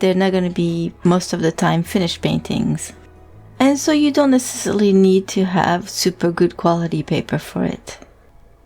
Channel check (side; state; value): both; identical; correlation 1.00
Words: they're not going to be most of the time finished paintings. And so you don't necessarily need to have super good quality paper for it.